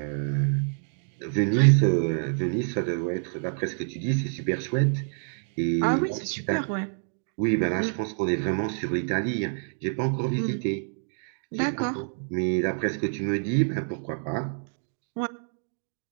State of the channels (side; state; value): left; silent; digital silence